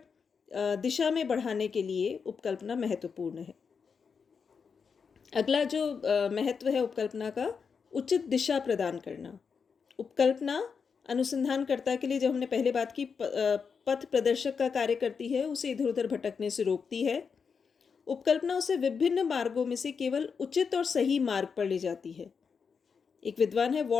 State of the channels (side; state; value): right; quieter; 5.9 dB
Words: दिशा में बढ़ाने के लिए उपकल्पना महत्वपूर्ण है। अगला जो महत्व है उपकल्पना का, उचित दिशा प्रदान करना। उपकल्पना अनुसंधानकर्ता के लिए, जो हमने पहले बात की, पथ प्रदर्शक का कार्य करती है, उसे इधर उधर भटकने से रोकती है। उपकल्पना उसे विभिन्न मार्गों में से केवल उचित और सही मार्ग पर ले जाती है। एक विद्वान है